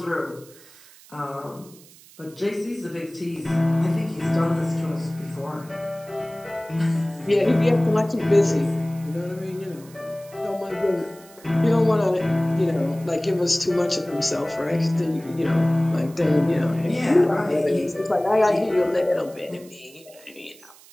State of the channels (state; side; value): noise; right; hiss, 23 dB below the sound